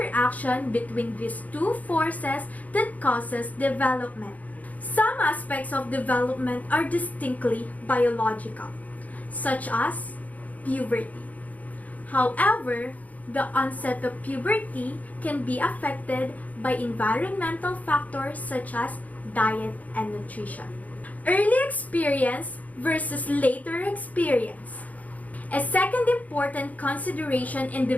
between these two forces that causes development. Some aspects of development are distinctly biological, such as puberty. However, the onset of puberty can be affected by environmental factors such as diet and nutrition. Early experience versus later experience. A second important consideration in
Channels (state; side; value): late; right; 0.075 ms